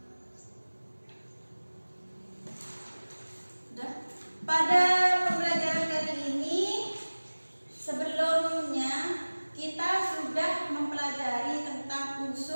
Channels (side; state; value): both; inverted; correlation -1.00